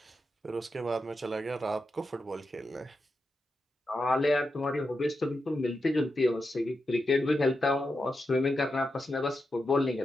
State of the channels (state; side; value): normal; both; correlation 0.88